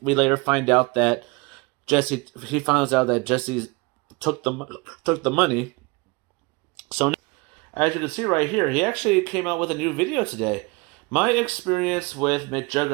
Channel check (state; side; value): quieter; left; 26.9 dB